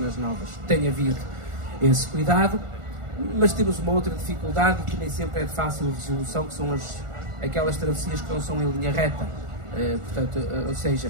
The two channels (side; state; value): left; late; 1.4 ms